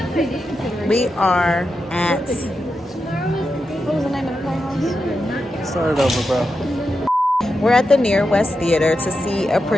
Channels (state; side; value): normal; both; correlation 0.88